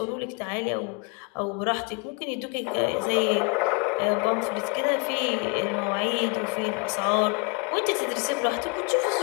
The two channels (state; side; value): quieter; right; 33.7 dB